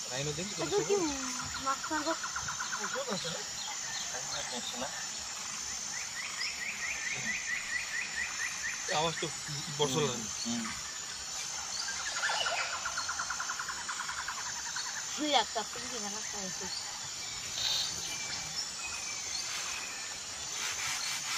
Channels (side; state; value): both; identical; correlation 1.00